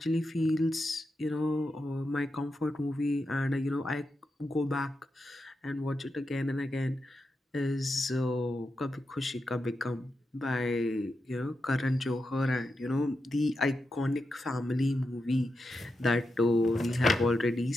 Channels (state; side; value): normal; both; correlation 0.88